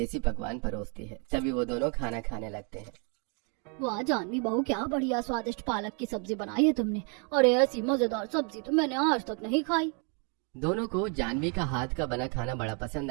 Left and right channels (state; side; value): quieter; left; 37.9 dB